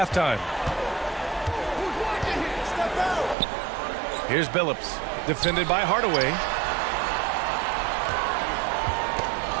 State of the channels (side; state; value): left; drops out; at 3.4 s